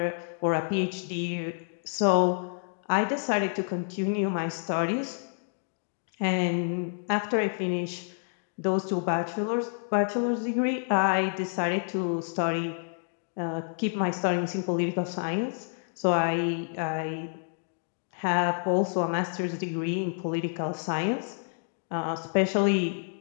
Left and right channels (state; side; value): silent; right; digital silence